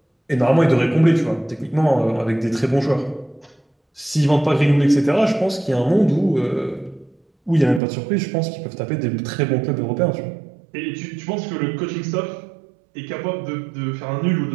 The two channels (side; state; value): left; drops out; at 7.8 s